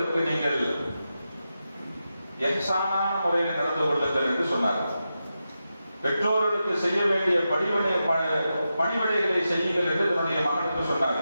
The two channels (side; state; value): both; inverted; correlation -0.90